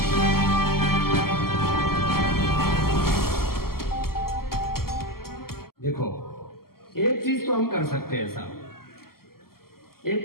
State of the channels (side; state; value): right; late; 0.93 ms